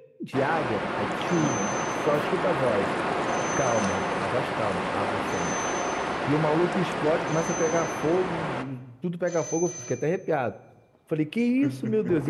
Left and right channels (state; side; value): identical; both; correlation 1.00